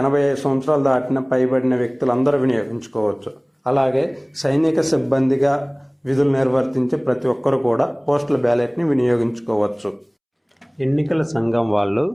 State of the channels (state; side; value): identical; both; correlation 1.00